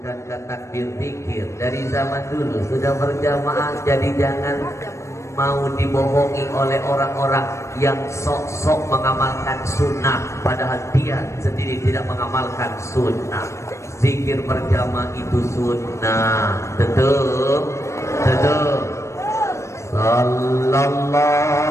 takbir zikir dari zaman dulu sudah berjamaah? Jadi jangan mau dibohongi oleh orang-orang yang sok-sok mengamalkan sunnah, padahal dia sendiri tidak mengamalkan sunnah. Zikir berjamaah itu sunnah. Betul.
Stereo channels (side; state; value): right; late; 0.14 ms